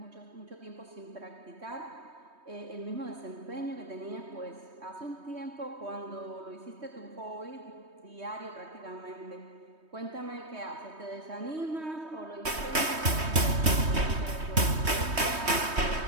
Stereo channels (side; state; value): left; late; 3.2 ms